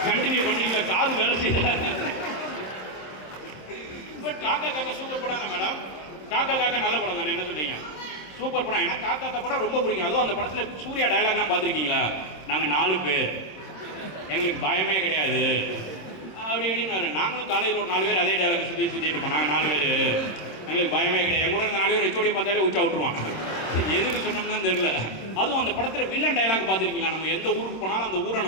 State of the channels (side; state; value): right; late; 26 ms